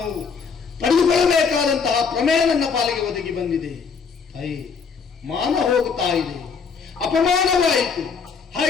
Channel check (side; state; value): right; quieter; 5.7 dB